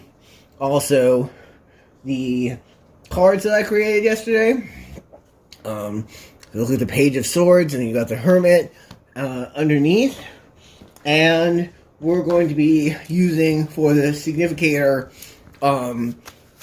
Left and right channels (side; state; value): both; identical; correlation 1.00